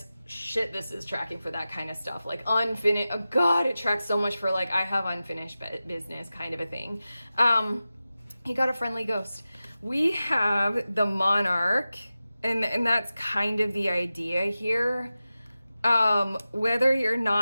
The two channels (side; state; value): both; inverted; correlation -0.95